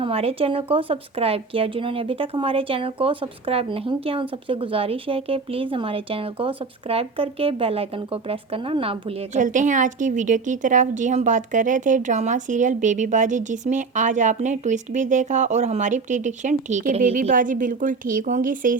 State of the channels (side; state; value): left; quieter; 4.5 dB